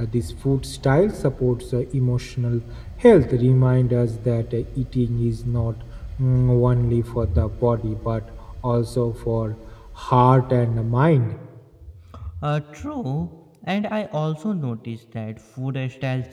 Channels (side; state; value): both; identical; correlation 1.00